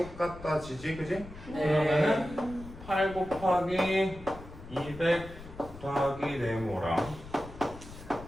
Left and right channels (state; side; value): noise; left; rumble, 15 dB below the sound